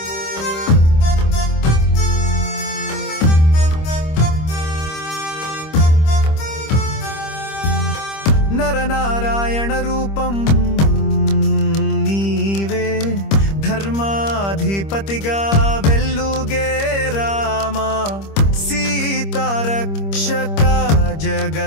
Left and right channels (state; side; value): late; right; 25 ms